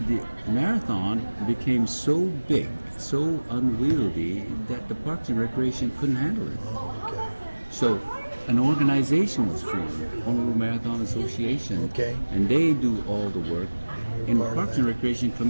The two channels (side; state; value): both; inverted; correlation -1.00